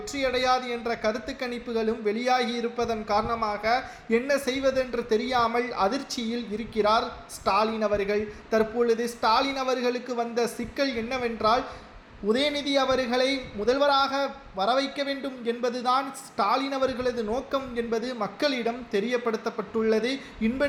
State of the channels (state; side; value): identical; both; correlation 1.00